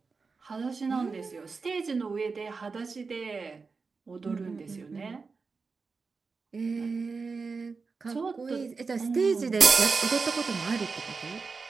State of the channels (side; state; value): left; quieter; 4.6 dB